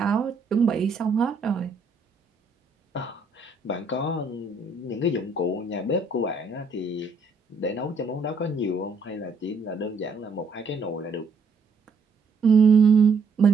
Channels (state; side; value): quieter; left; 4.0 dB